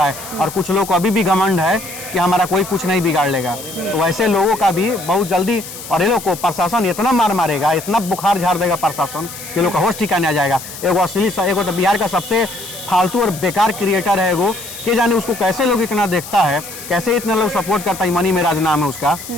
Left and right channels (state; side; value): noise; left; hiss, 12 dB below the sound